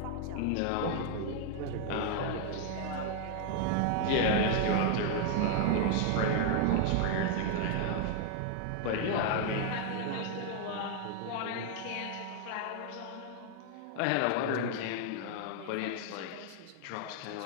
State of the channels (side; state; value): both; different; correlation 0.00